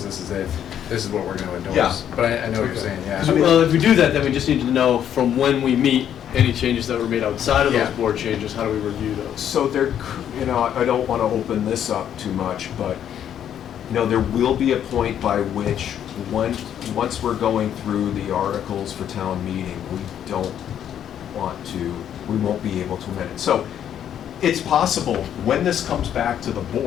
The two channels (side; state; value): right; quieter; 9.8 dB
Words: this is it, this is what we're gonna endorse. Yeah. But I know what you're saying, yeah. Well, if we do that, then we just need to know from when we meet, any changes that were made outside of those Yeah. board changes, how do we review those? So there, I don't want to open this up too much, but, there will be a point by which, once we're going through the articles for town meeting, we won't be able to amend it. So it's possible, when this comes back to the